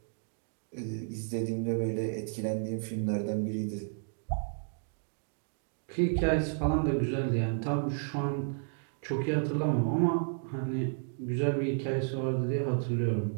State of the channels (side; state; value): left; silent; digital silence